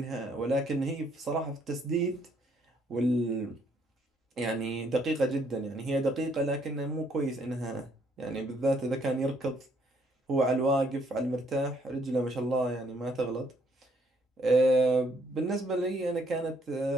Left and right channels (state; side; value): normal; both; correlation 0.68